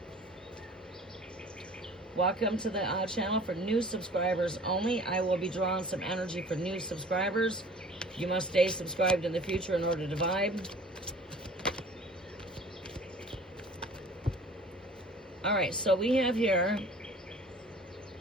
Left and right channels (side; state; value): both; normal; correlation 0.47